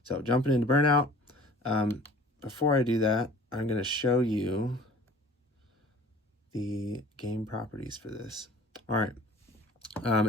So jumping into Burnout, before I do that, I'm going to show you the game properties for this. All right.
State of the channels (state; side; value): normal; both; correlation 0.48